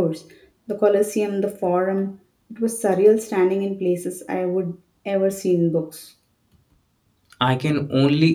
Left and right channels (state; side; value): identical; both; correlation 1.00